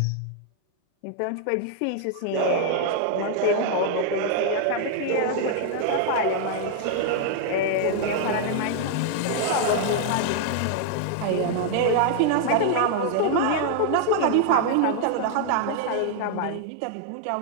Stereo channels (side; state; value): both; different; correlation -0.01